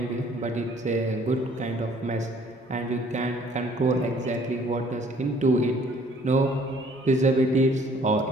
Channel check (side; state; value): both; normal; correlation 0.58